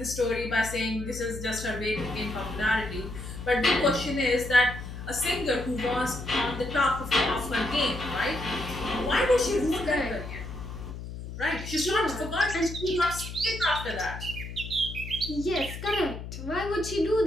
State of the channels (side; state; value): left; noise; hum, 9 dB below the sound